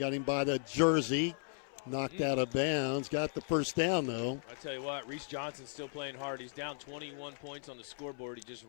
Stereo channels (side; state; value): right; silent; 54 dB below the other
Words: him by the jersey. Knocked out of bounds. Got the first down, though. I tell you what, Reese Johnson's still playing hard. He's down 21 points on the scoreboard. He just